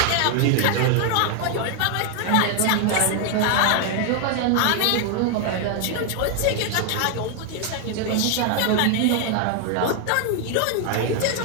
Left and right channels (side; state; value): both; different; correlation 0.00